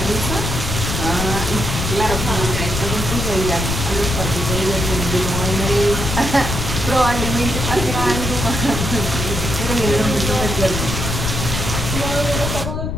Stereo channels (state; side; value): noise; left; rumble, 2 dB below the sound